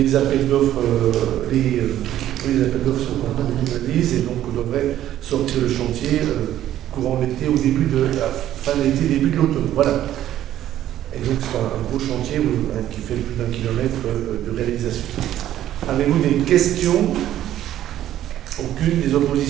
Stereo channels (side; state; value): left; quieter; 12.3 dB